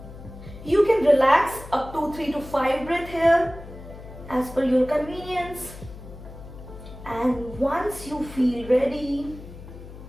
You can relax up to 3 to 5 breaths here as per your convenience, and once you feel ready,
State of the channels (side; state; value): left; noise; hum, 15 dB below the sound